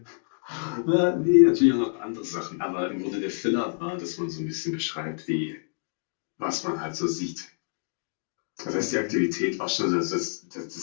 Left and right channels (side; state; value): right; silent; digital silence